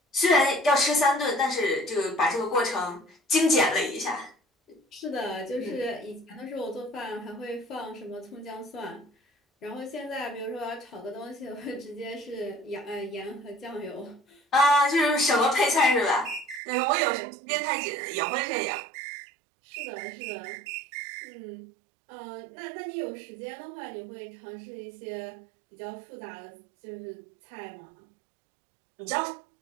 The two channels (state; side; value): drops out; left; at 16.6 s